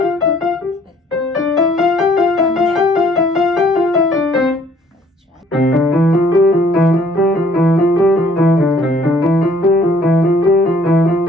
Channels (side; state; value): both; normal; correlation 0.60